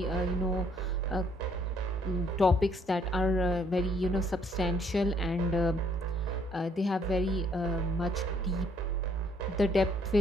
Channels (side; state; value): both; normal; correlation 0.66